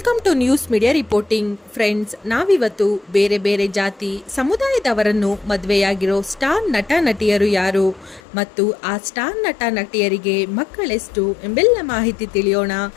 to news media reporting. Friends, ನಾವಿವತ್ತು ಬೇರೆ ಬೇರೆ ಜಾತಿ ಸಮುದಾಯದವರನ್ನು ಮದುವೆಯಾಗಿರೋ ಸ್ಟಾರ್ ನಟ ನಟಿಯರು ಯಾರು ಮತ್ತು ಆ ಸ್ಟಾರ್ ನಟ ನಟಿಯರಿಗೆ ಮಕ್ಕಳೆಷ್ಟು ಎಂಬೆಲ್ಲ ಮಾಹಿತಿ ತಿಳಿಯೋಣ.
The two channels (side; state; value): right; drops out; at 8.2 s